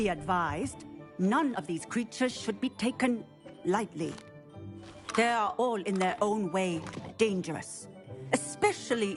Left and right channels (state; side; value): identical; both; correlation 1.00